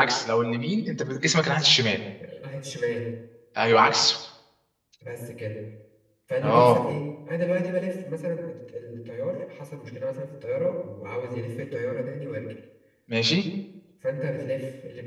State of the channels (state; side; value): identical; both; correlation 1.00